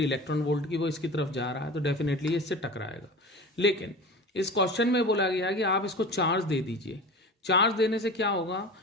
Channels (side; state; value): both; normal; correlation 0.34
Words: वोल्ट की, वो इसकी तरफ जा रहा है, तो डेफिनेटली इससे टकराएगा। लेकिन इस क्वेश्चन में बोला गया है कि आप इसको चार्ज दे दीजिए। चार्ज देने से क्या होगा,